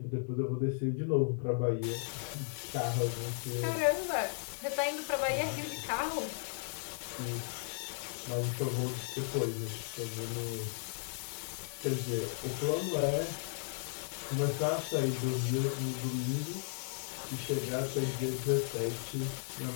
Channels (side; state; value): right; silent; digital silence